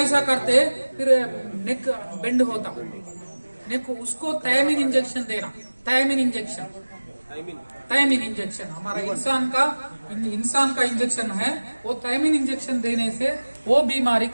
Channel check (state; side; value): inverted; both; correlation -1.00